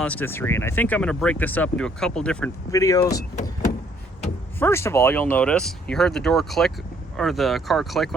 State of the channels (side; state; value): both; normal; correlation 0.65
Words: and I think I'm going to break this up into a couple different videos. First of all, you'll notice you heard the door click, or the car click